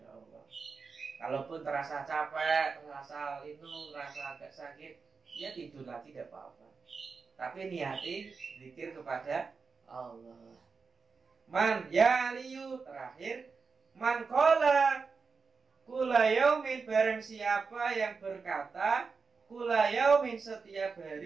Allah. Kalaupun terasa capek, terasa lindu, terasa agak sakit, ya tidur lagi tidak apa-apa. Tapi niati zikir kepada Allah. Man yaliyu, terakhir, man qala kula yaumin, barang siapa yang berkata kula yaumin, setiap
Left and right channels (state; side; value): quieter; left; 4.9 dB